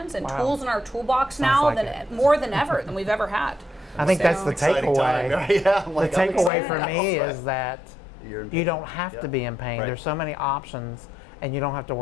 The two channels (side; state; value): right; drops out; at 6.5 s